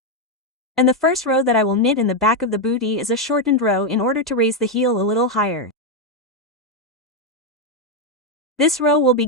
And the first row that I will knit in the back of the booty is a shortened row in order to raise the heel a little higher. This row will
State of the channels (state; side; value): normal; both; correlation 0.04